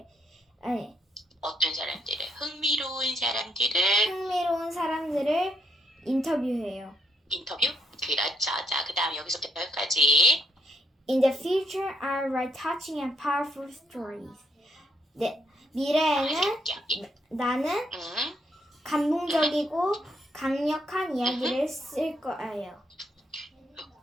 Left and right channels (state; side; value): normal; both; correlation 0.74